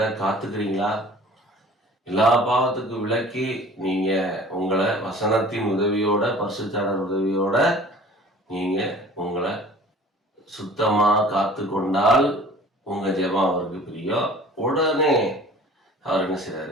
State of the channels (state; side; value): normal; both; correlation 0.47